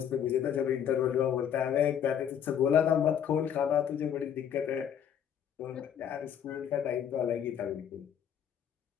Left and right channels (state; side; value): quieter; right; 8.9 dB